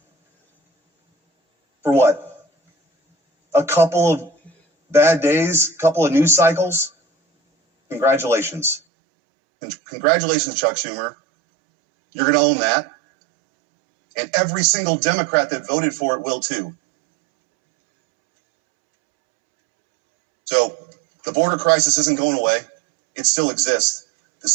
For what? A couple of bad days, a couple of news cycles? Congratulations. Congratulations, Chuck Schumer. You're going to own that. And every single Democrat that voted for it will too. So the border crisis isn't going away. It still exists. The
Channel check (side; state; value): left; drops out; at 8.8 s